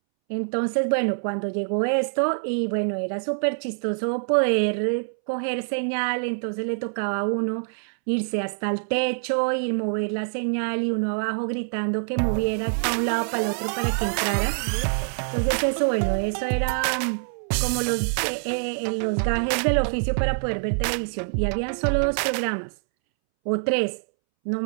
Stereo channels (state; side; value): silent; left; 62 dB below the other